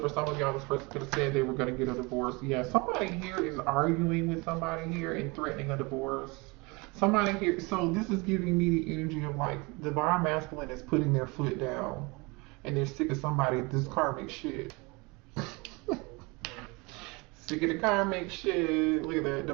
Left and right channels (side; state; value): left; quieter; 26.9 dB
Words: some of y'all, this person could have said they were going to get a divorce. Yeah, somebody here is arguing with somebody here and threatening a divorce. Somebody here, so this is giving me the energy of like, divine masculine is putting their foot down and they're sick of somebody, this karmic shit. Sick of the karmic shit. Look at that